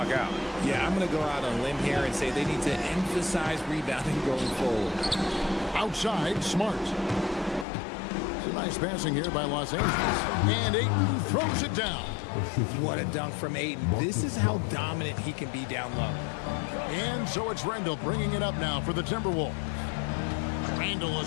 out. Yeah, I'm going to go out on a limb here and say they need to emphasize rebounding going forward. Outside, Smart. It's a nice passing here by Los Angeles. And Ayton throws it down. What a dunk from Ayton. This is how dominant he can be down low. And so it's Randall bringing it up now for the Timberwolves. Randall a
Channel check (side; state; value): right; drops out; at 7.7 s